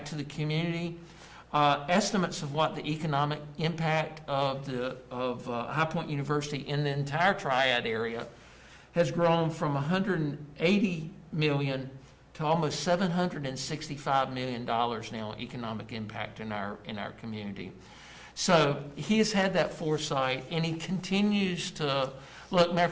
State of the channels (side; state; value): both; identical; correlation 1.00